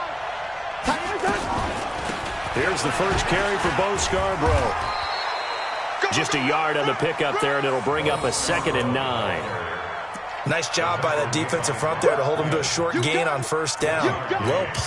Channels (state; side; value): identical; both; correlation 1.00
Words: Here's the first carry for Bo Scarborough. Just a yard on the pickup there, and it'll bring up a 2nd and 9. Nice job by that defensive front there to hold him to a short gain on 1st down. Well